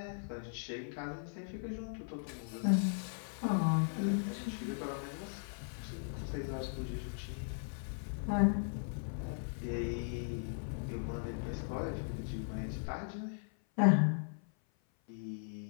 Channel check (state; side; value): silent; right; 52 dB below the other